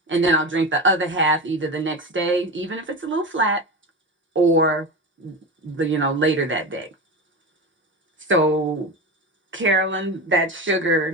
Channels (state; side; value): normal; both; correlation 0.23